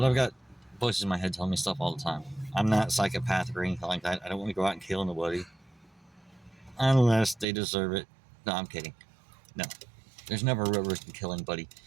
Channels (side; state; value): left; drops out; at 7.5 s